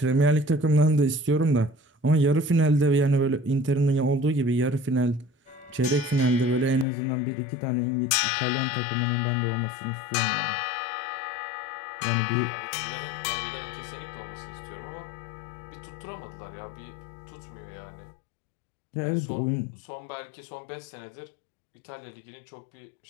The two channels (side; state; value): right; drops out; at 6.9 s